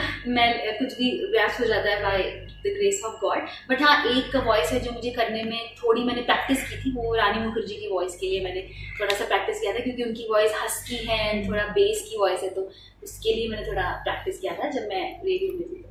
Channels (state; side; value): identical; both; correlation 1.00